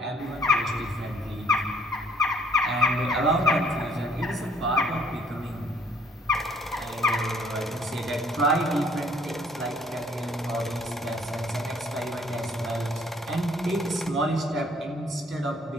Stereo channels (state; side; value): normal; both; correlation 0.62